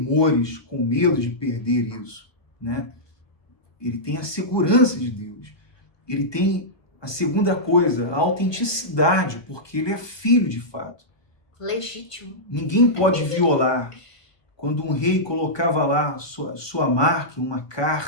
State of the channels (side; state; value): right; late; 1.2 ms